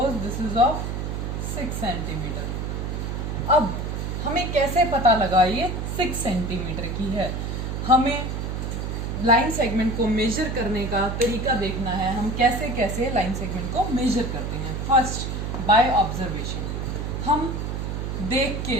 this is of 6 centimetre. अब हमें कैसे पता लगा ये 6 सेंटीमीटर की है? हमें लाइन सेगमेंट को मेजर करने का तरीका देखना है, हम कैसे कैसे लाइन सेगमेंट को मेजर करते हैं। फर्स्ट बाय ऑब्जर्वेशन, हम देख के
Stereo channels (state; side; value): noise; right; hum, 3 dB below the sound